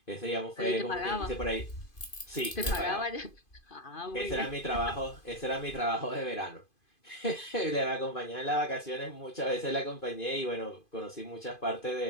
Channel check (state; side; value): late; right; 2.5 ms